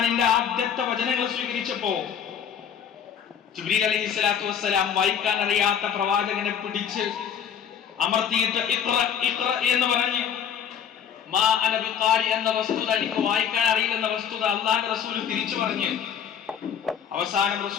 ആദ്യത്തെ വചനങ്ങൾ സ്വീകരിച്ചപ്പോ ജിബ്രീൽ അലൈഹിസ്സലാത്തു വസ്സലാം വായിക്കാൻ അറിയാത്ത പ്രവാചകനെ പിടിച്ച് അമർത്തിയിട്ട് ഇഖ്റ എന്ന് പറഞ്ഞ് മാ അന ബിഖാരി എന്ന വസ്തുത, എനിക്ക് വായിക്കാൻ അറിയില്ലെന്ന വസ്തുത അല്ലാഹുവിന്റെ റസൂൽ തിരിച്ചു പറഞ്ഞ് അവസാനം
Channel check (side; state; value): right; quieter; 8.3 dB